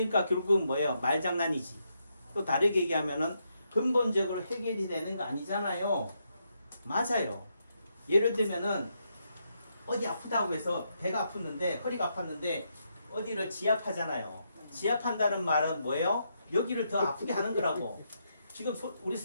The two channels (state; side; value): inverted; both; correlation -0.80